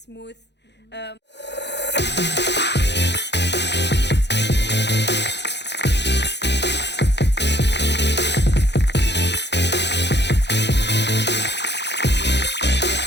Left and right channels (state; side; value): late; right; 0.50 ms